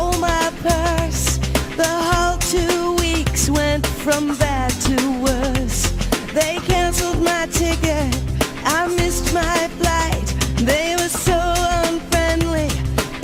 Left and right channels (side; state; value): both; identical; correlation 1.00